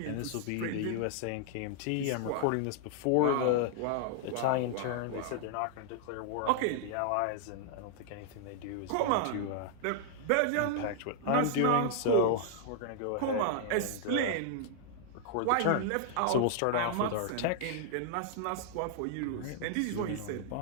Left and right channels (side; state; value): both; different; correlation -0.01